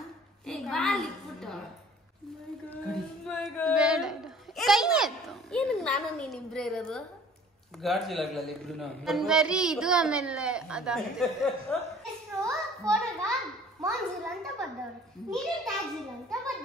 ಬಾಲ್ ಇಟ್ಬಿಟ್ಟು ಏನಕ್ಕೆ ನಾನು ನೀನಿಬ್ರೇ ಇರೋದು? ಗರ್ಜಿಲಾಗ್ಲಲ್ಲಿ ಇಬ್ರು ನನ್ ಬರೀ ಇದು ಆಮೇಲೆ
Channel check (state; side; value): normal; both; correlation 0.51